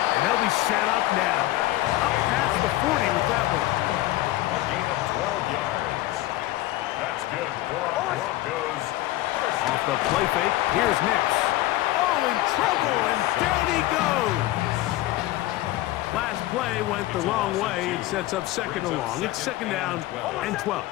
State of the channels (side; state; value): right; quieter; 16.6 dB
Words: they'll be set up now. Up past the 40 with that one. A gain of 12 yards. That's good for Broncos. Off the play fake, here's Nix. Oh, in trouble, and down he goes. Last play went the wrong way. It sets up second and long. It's second down and 12.